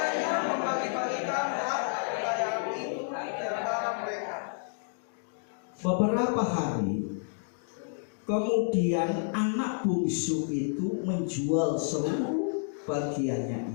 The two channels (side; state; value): right; silent; digital silence